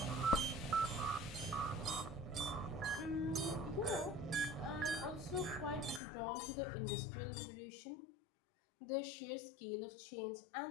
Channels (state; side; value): drops out; right; at 6.0 s